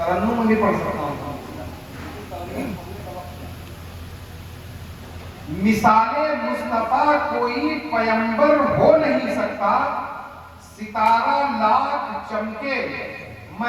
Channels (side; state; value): both; identical; correlation 1.00